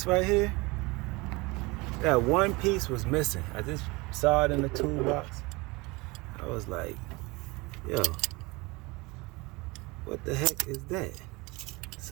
right here, that one piece was missing. I just saw it in the toolbox. I was like, yo, what the heck is that?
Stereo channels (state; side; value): quieter; left; 24.4 dB